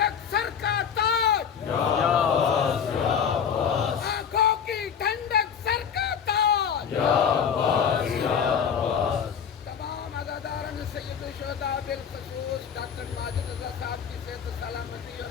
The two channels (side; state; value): right; quieter; 7.4 dB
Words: سر کا تاج، یا عباس یا عباس۔ آنکھوں کی ٹھنڈک سر کا تاج، یا عباس یا عباس۔ تمام عزاداران سید الشہداء بالخصوص ڈاکٹر ماجد رضا صاحب کی صحت و سلامتی اور